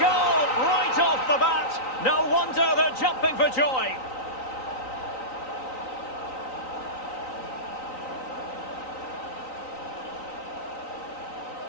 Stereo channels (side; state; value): right; late; 3.9 ms